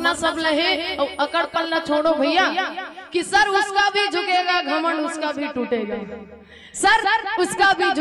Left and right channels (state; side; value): identical; both; correlation 1.00